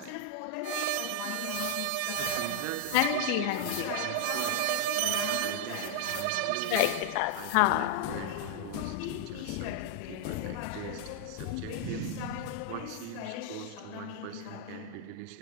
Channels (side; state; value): both; different; correlation 0.00